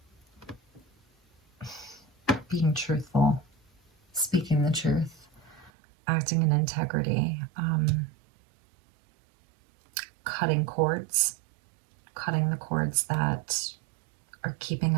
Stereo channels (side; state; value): left; drops out; at 5.7 s